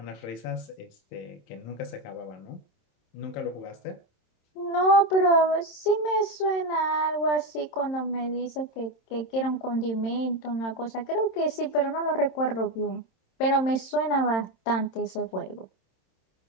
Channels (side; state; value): right; late; 27 ms